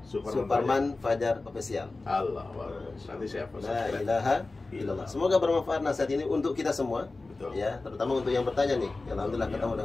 Suparman Fajar Official. Allah, nanti siapa? La ilaha illallah. Semoga bermanfaat nasihat ini untuk kita semua. Betul. Ya, terutama untuk yang bertanya nih. Alhamdulillah ketemu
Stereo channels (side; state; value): right; quieter; 3.4 dB